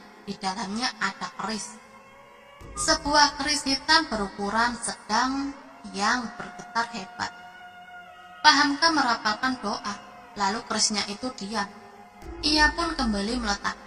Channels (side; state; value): both; identical; correlation 1.00